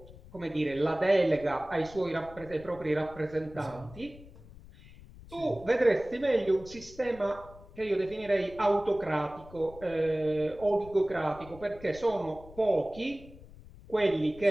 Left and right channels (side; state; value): left; noise; rumble, 19 dB below the sound